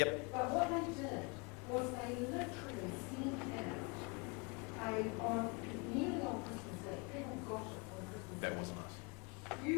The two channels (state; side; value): quieter; right; 31.1 dB